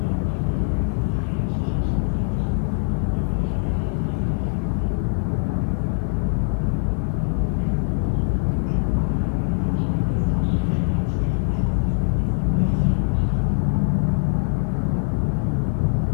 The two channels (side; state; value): right; silent; 60 dB below the other